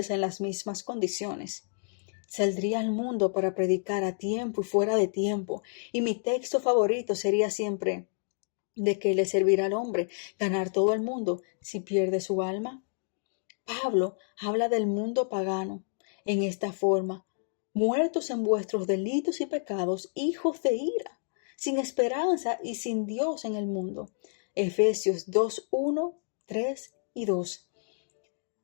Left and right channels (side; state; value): right; silent; digital silence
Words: en las mismas condiciones. Saldría al mundo para predicar a tiempo y fuera de tiempo, y mi texto favorito sería siempre: ¿de qué le servirá al hombre ganar todo el mundo si pierde su alma? Pablo habla del mundo pagano en esta forma: muertos en vuestros delitos y pecados, hijos de ira, sin esperanza y sin Dios en el mundo. Efesios 2:1, 3 y 2.